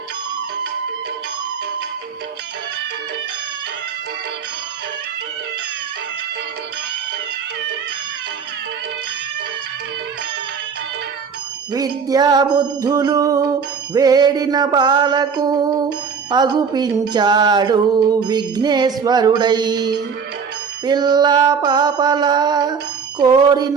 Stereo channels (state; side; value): quieter; left; 6.1 dB